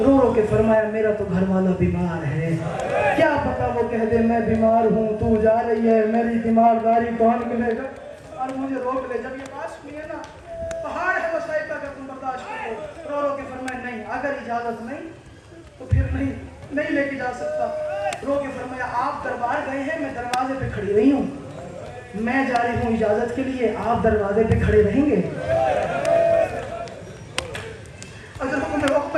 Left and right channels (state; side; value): identical; both; correlation 1.00